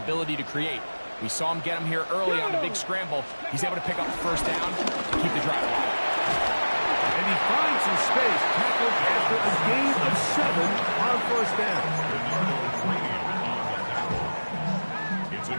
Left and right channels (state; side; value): inverted; both; correlation -1.00